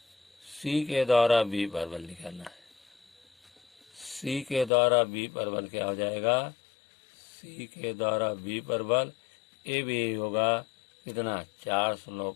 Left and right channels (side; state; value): right; drops out; at 4.7 s